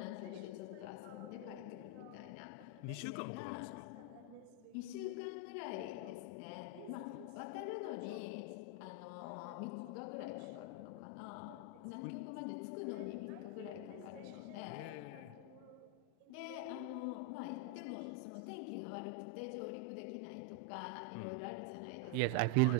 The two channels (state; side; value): different; both; correlation 0.00